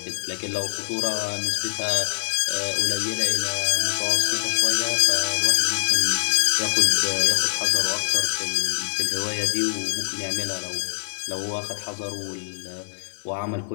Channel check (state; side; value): silent; right; 63 dB below the other